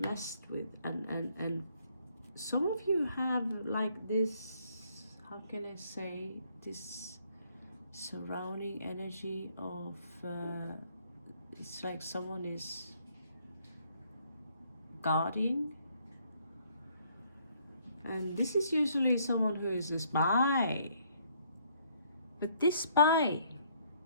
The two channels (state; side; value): inverted; both; correlation -0.67